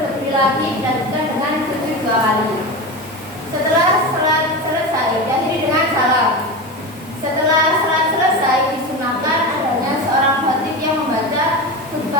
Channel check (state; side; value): normal; both; correlation 0.23